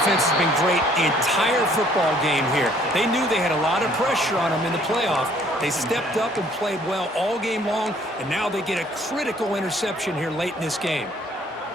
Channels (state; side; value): normal; both; correlation 0.60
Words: has been great the entire football game here. They knew they had a lot of pressure on them in the playoff. They stepped up and played well all game long, and now they get a critical interception here late in this game.